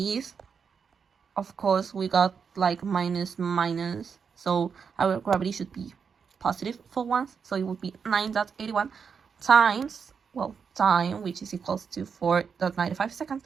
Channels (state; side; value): quieter; left; 6.2 dB